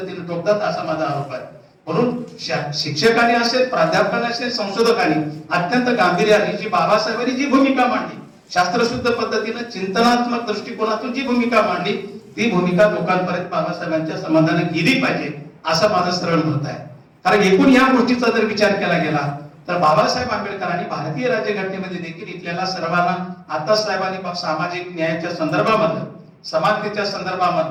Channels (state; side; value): identical; both; correlation 1.00